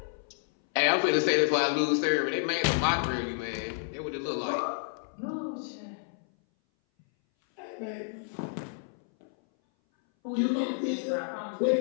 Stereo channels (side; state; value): right; silent; 58 dB below the other